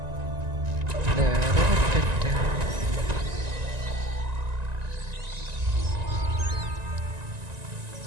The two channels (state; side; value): late; left; 1.9 ms